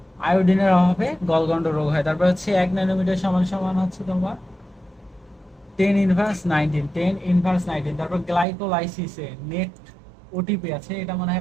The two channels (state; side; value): drops out; left; at 8.5 s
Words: আয়োডিনের অভাবে গলগন্ড রোগ হয়। তারপর হচ্ছে 1 ন্যানোমিটার সমান সমান হচ্ছে তোমার 10^19, 10^19। তারপর গ্লাইকোলাইসিসে নেট ওটিপি আছে, এটা মনে